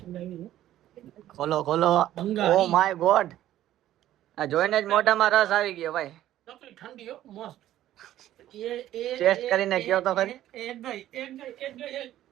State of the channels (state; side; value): quieter; left; 13.1 dB